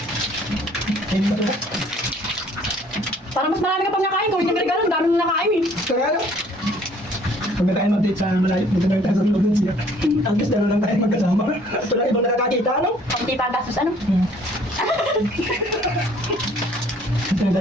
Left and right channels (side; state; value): both; normal; correlation 0.58